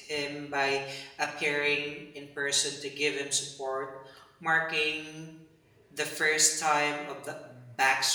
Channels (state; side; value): identical; both; correlation 1.00